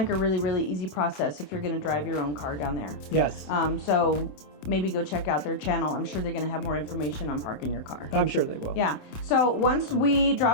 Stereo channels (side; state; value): right; late; 27 ms